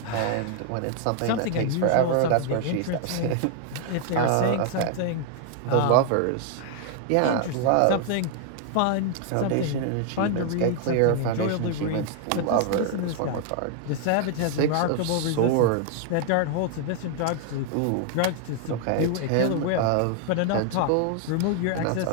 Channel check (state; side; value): different; both; correlation 0.00